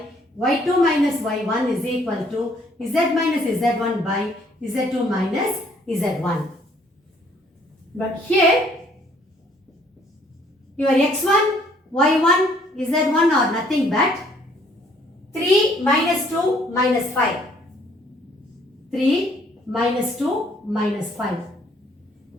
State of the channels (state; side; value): normal; both; correlation 0.63